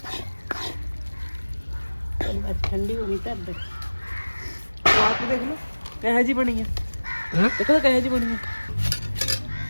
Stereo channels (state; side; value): inverted; both; correlation -1.00